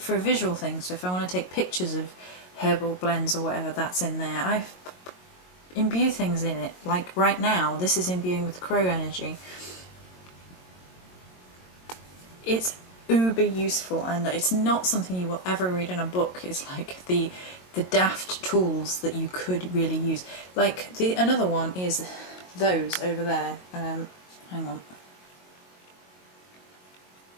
a visual thing, so if I want to take pictures of herbal blends or whatever, that's in there. I imbue things in it, like right now this is imbuing with crow energy. It's uber useful, and it's not something you will ever read in a book. It's like the daft tools that you could really use. Like another one is those over there. Hang on.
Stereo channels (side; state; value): right; late; 22 ms